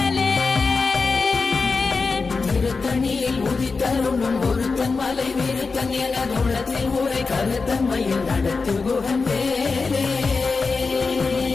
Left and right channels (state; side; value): quieter; right; 4.4 dB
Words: திருத்தணியில் உதித்தருளும் ஒருத்தன் மலை விருத்தன் எனதுளத்தில் உரை கருத்தன் மயில் நடத்து குகன் வேலே